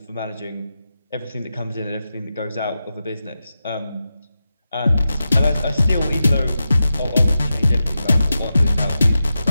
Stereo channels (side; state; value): both; inverted; correlation -0.90